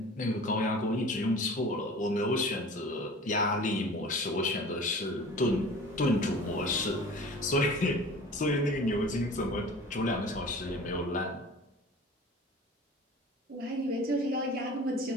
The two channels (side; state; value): both; normal; correlation 0.41